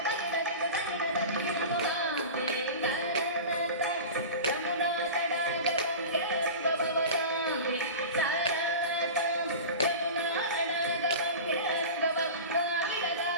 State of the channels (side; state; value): both; inverted; correlation -0.32